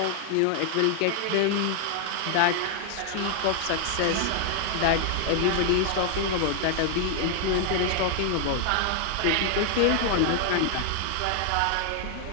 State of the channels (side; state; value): both; different; correlation 0.00